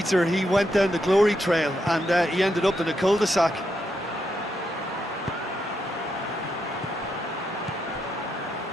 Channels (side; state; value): both; normal; correlation 0.82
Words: he went down the glory trail and he ended up in a cul-de-sac.